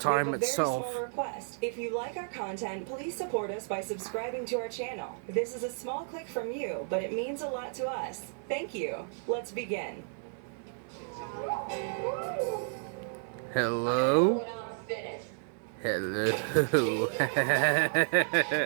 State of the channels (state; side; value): silent; left; 56 dB below the other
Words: time we have a itself. very small request. If you like our content, please support us by subscribing to our channel. This is a small click from you, but it means a lot to us. Thank you. Let's begin. Hello? Hello.